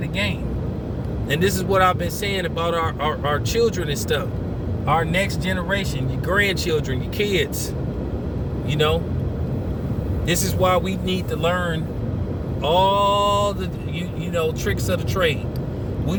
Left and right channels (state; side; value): identical; both; correlation 1.00